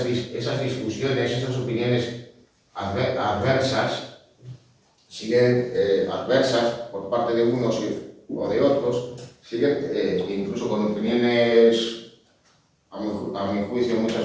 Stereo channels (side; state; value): both; identical; correlation 1.00